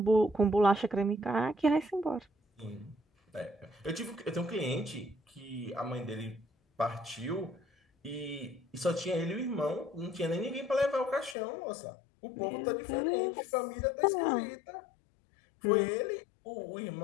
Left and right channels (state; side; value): drops out; right; at 11.4 s